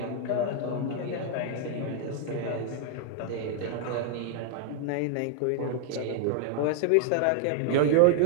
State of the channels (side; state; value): both; different; correlation -0.01